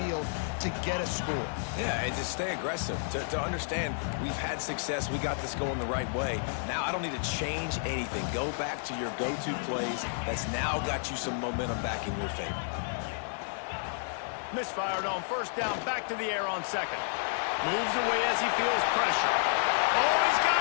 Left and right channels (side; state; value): right; silent; 55 dB below the other